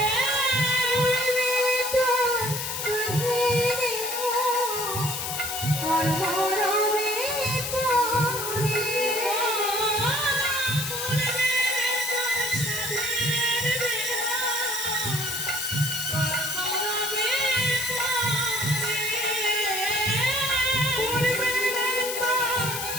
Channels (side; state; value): left; noise; hiss, 4 dB below the sound